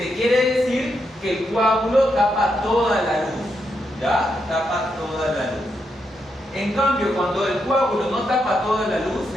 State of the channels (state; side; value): normal; both; correlation 0.82